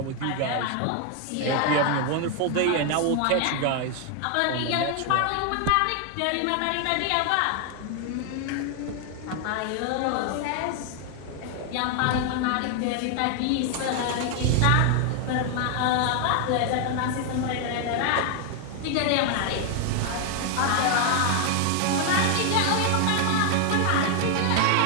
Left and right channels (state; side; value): different; both; correlation 0.00